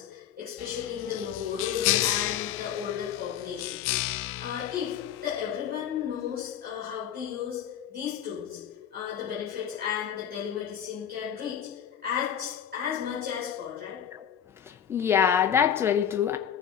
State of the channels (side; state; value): right; quieter; 9.3 dB